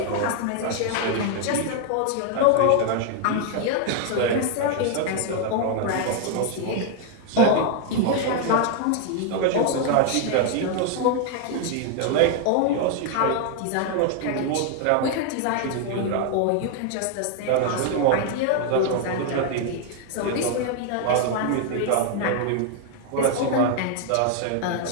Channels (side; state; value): both; different; correlation 0.00